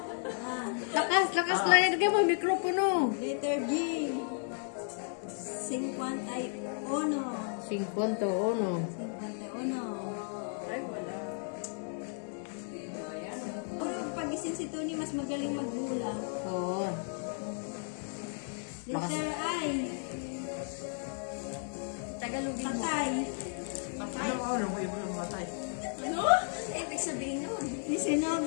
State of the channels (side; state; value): right; silent; 55 dB below the other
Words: Lakas lang yan. Lagay mo mikropono. Letter G. 51. 51. 51. Ay, wala. Puro pag-isip si Tony, mas magaling magbula. Oo. Letter I. Tagalogin mo. Patay. Ano ko yung matay? Ano? Ibig sabihin nun.